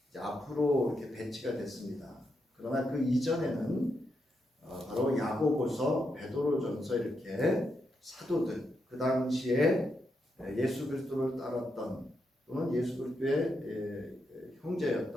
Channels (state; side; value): normal; both; correlation 0.83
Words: 이제 앞으로 이렇게 배치가 됐습니다. 그러나 그 이전에는 바로 야고보서, 베드로전서 이렇게 사도들, 그 당시에 예수 그리스도를 따랐던 또는 예수 그리스도의